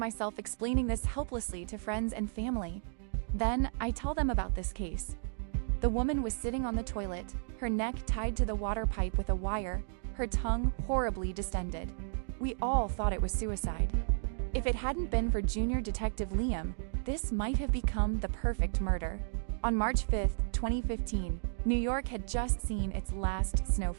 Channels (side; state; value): left; silent; digital silence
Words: explaining this helplessly to friends and family. Then, I tell them about this case. The woman was sitting on the toilet, her neck tied to the water pipe with a wire, her tongue horribly distended. We all thought it was suicide. If it hadn't been for Junior Detective Liam, this might have become the perfect murder. On March 5, 2015, New York had just seen its last